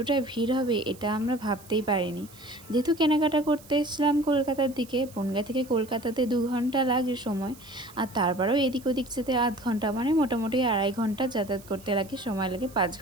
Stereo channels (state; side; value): noise; right; hiss, 22 dB below the sound